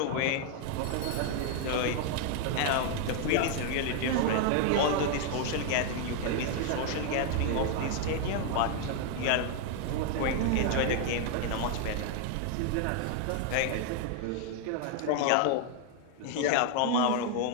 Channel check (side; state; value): both; different; correlation 0.00